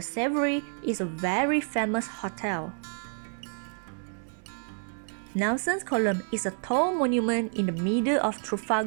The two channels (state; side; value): silent; left; 59 dB below the other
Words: Savoy is a very famous hotel. Nelson's Column is a tall monument in the middle of